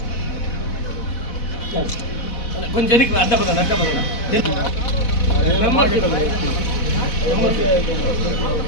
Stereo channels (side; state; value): right; late; 4.1 ms